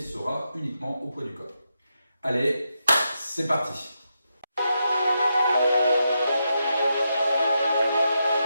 uniquement au poids du corps. Allez, c'est parti!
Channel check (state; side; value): inverted; both; correlation -0.85